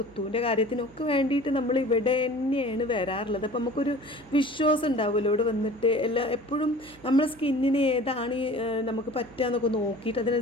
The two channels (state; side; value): noise; right; hum, 24 dB below the sound